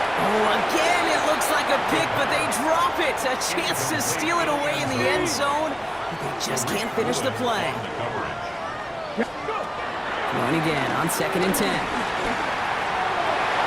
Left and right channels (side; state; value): both; identical; correlation 1.00